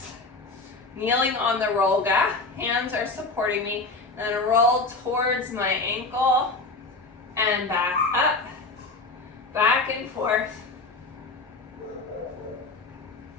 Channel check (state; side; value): quieter; right; 3.5 dB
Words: Kneeling on the Rolga, hands are supporting me. And then roll towards my ankle and back up, back and forth.